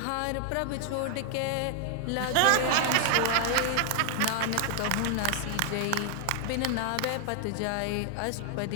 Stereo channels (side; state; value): both; different; correlation 0.00